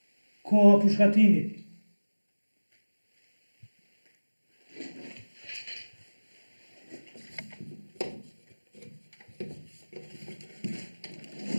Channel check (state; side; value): inverted; both; correlation -1.00